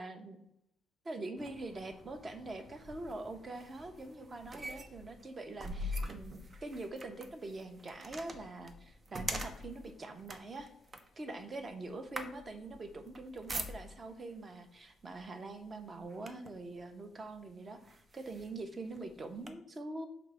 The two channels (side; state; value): both; normal; correlation 0.81